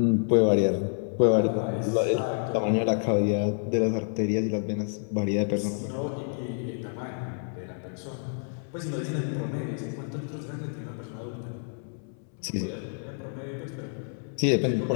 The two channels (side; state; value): right; silent; 59 dB below the other